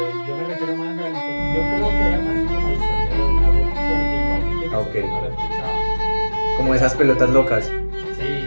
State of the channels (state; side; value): inverted; both; correlation -1.00